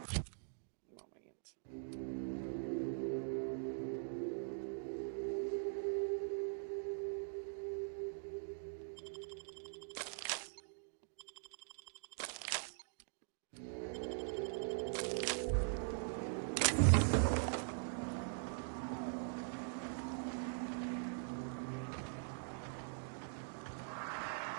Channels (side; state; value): left; silent; digital silence